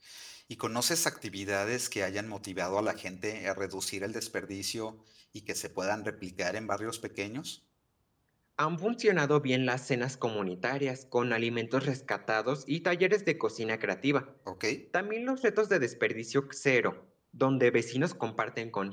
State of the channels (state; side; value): identical; both; correlation 1.00